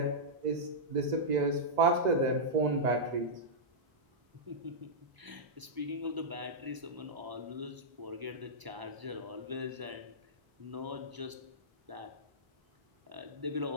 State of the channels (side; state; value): left; late; 1.0 ms